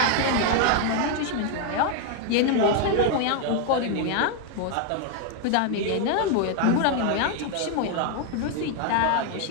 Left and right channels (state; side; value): different; both; correlation 0.00